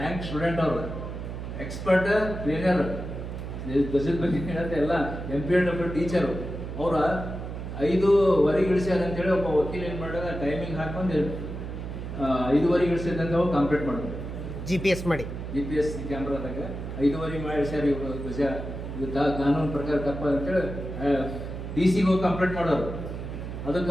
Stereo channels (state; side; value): noise; right; hum, 7 dB below the sound